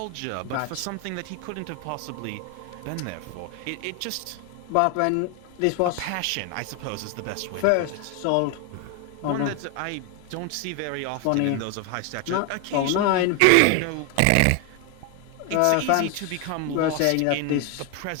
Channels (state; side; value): different; both; correlation 0.01